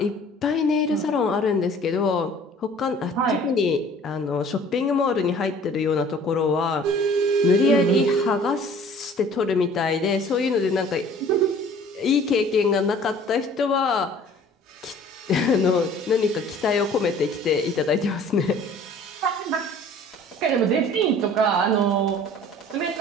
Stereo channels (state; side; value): normal; both; correlation 0.50